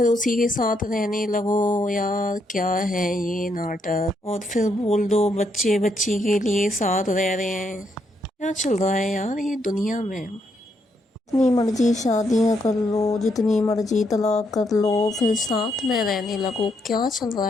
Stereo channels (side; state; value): both; normal; correlation 0.76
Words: उसी के साथ रहने लगो। यार क्या है ये नाटक, और फिर बोल दो बच्चे बच्ची के लिए साथ रह रहे हैं। क्या चल रहा है यार ये दुनिया में? जितनी मर्जी शादियां कर लो, जितनी मर्जी तलाक कर लो, फिर साथ में रहने लगो। क्या चल रहा